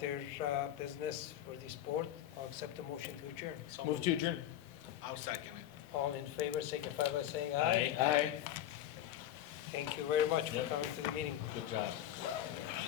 business for this board, I'll accept the motion to adjourn. So Move to adjourn. I'll second it. All in favor, signify by saying aye. Aye. Thank you very much for Yep. coming to the meeting. Good job.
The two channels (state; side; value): quieter; right; 11.9 dB